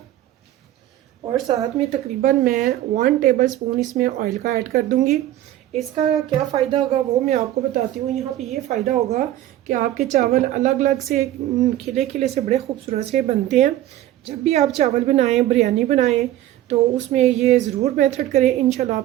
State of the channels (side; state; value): left; quieter; 13.7 dB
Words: और साथ में तकरीबन मैं 1 टेबल स्पून इसमें ऑयल का ऐड कर दूंगी। इसका क्या फ़ायदा होगा वो मैं आपको बताती हूँ। यहाँ पे ये फ़ायदा होगा कि आपके चावल अलग अलग से, खिले खिले से, बड़े खूबसूरत से बनते हैं। जब भी आप चावल बनाएं, बिरयानी बनाएं, तो उसमें ये ज़रूर मेथड करें। इंशाल्लाह